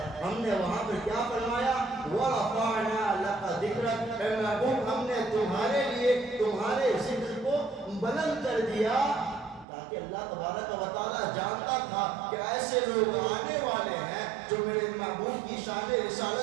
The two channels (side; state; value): left; drops out; at 9.7 s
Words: ہم نے وہاں پہ کیا فرمایا, وَرَفَعْنَا لَكَ ذِكْرَكَ, اے محبوب ہم نے تمہارے لیے تمہارے ذکر کو بلند کر دیا, تاکہ اللہ تبارک و تعالیٰ جانتا تھا کہ ایسے لوگ آنے والے ہیں جو میرے محبوب کی شان